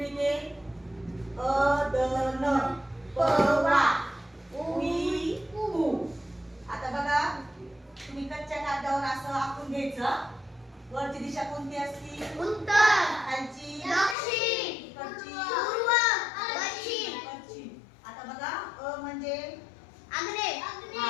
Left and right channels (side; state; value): right; drops out; at 14.2 s